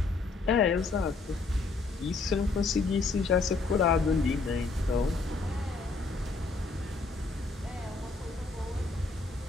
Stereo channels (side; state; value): right; quieter; 3.8 dB